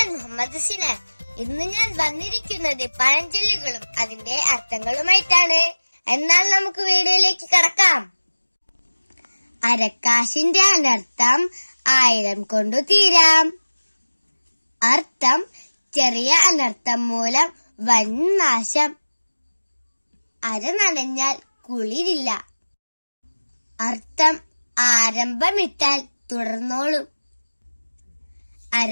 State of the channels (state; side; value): inverted; both; correlation -1.00